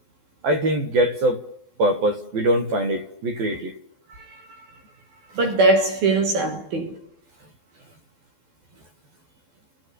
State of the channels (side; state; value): left; late; 12 ms